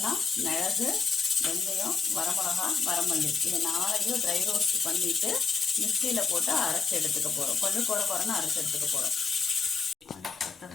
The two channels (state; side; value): quieter; right; 5.1 dB